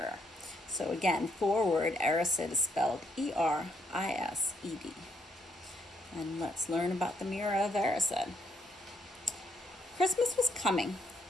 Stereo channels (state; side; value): normal; both; correlation 0.72